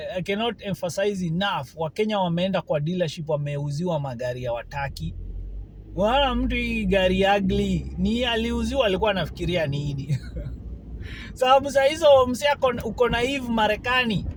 I cannot emphasize enough, Wakenya wameenda kwa dealership wameuziwa magari ya wataki. Wana mtu hii gari ugly, ni aliuziwa alikuwa anafikiria nini? Sababu saa hizo msiako uko naive Marekani,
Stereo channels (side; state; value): both; identical; correlation 1.00